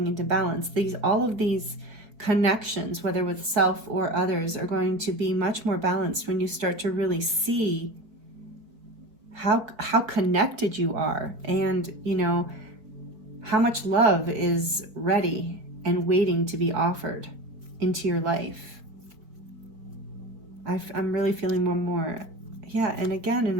into balance. All of these connections, whether with self or others, are going to be much more balanced when you start to really see how connected you are, and, you know, how much love is ready and waiting to be offered into your life. I'm really feeling one more. Yeah, and again in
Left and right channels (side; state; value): left; late; 4.5 ms